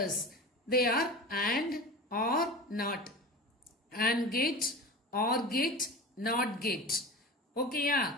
they are and, or, not. And gate, or gate, not gate. Okay,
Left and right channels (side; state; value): both; normal; correlation 0.31